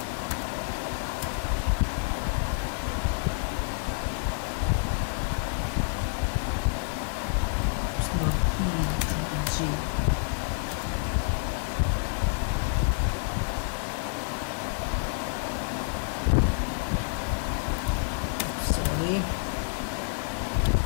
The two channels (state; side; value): silent; right; 59 dB below the other